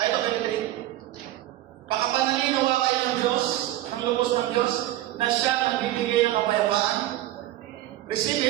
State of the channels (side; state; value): left; quieter; 14.7 dB